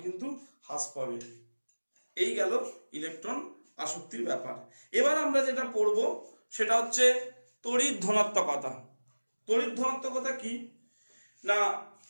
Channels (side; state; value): both; inverted; correlation -1.00